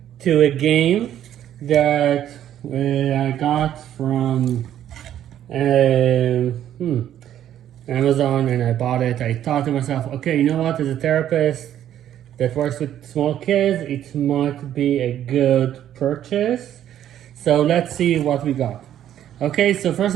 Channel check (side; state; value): left; quieter; 11.1 dB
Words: to a game that I got from Amazon, and I bought it. I thought to myself, okay, you know what, as a therapist that works with small kids, it might be a good purchase. So let's see what we got. Okay, so first